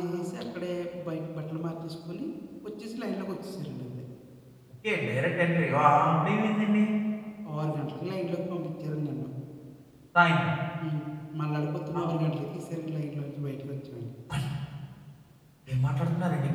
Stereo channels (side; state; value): both; identical; correlation 1.00